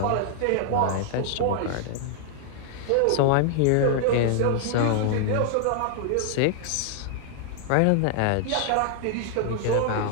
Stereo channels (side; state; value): both; different; correlation -0.01